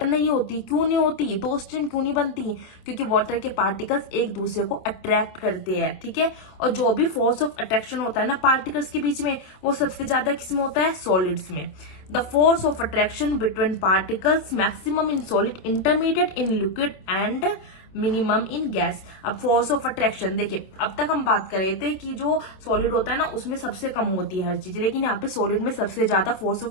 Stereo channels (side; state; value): right; late; 26 ms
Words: नहीं होती। क्यों नहीं होती, दो स्ट्रीम क्यों नहीं बनती, क्योंकि वाटर के पार्टिकल्स एक दूसरे को अट्रैक्ट करते हैं। ठीक है, और जो भी फोर्स ऑफ अट्रैक्शन होता है ना पार्टिकल्स के बीच में, वो सबसे ज्यादा किसमें होता है, सॉलिड्स में। The force of attraction between particles maximum in solid, intermediate in liquid and minimum in gas. अब फोर्स ऑफ अट्रैक्शन देखिए, अब तक हम बात कर रहे थे कि जो सॉलिड होता है ना उसमें सबसे कम होती है हर चीज, लेकिन यहाँ पे सॉलिड में सबसे ज्यादा फोर्स